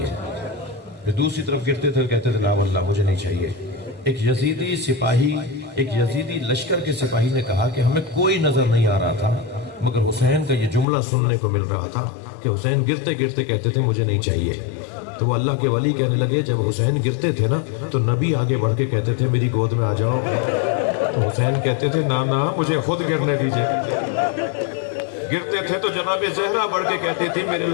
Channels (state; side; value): drops out; right; at 10.9 s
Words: پھر دوسری طرف گرتے تھے کہتے تھے لا واللہ مجھے نہیں چاہیے. ایک یزیدی سپاہی، ایک یزیدی لشکر کے سپاہی نے کہا کہ ہمیں کوئی نظر نہیں آ رہا تھا، مگر حسین کا یہ جملہ سننے کو مل رہا تھا کہ حسین گرتے گرتے کہتے تھے مجھے نہیں چاہیے. تو وہ اللہ کے ولی کہنے لگے جب حسین گرتے تھے نا تو نبی آگے بڑھ کے کہتے تھے میری گود میں آ جاؤ. تو حسین کہتے تھے نا نا مجھے خود گرنے دیجئے. گرتے تھے تو جناب زہرا بڑھ کے کہتی تھی میرے